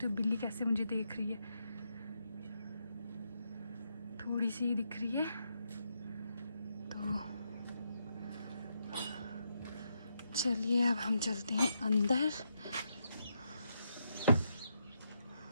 हो बिल्ली कैसे मुझे देख रही है, थोड़ी सी दिख रही है। तो चलिए अब हम चलते हैं अंदर।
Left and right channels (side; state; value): both; inverted; correlation -0.81